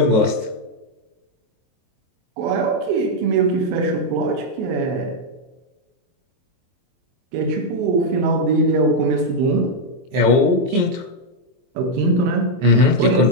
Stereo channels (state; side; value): late; left; 23 ms